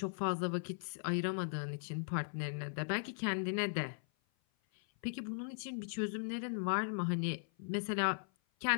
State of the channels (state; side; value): silent; right; 52 dB below the other